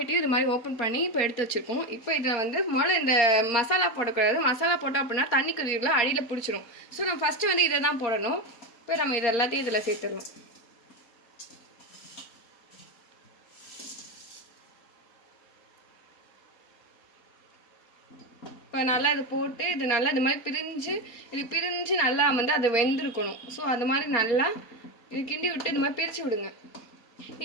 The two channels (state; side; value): late; right; 4.3 ms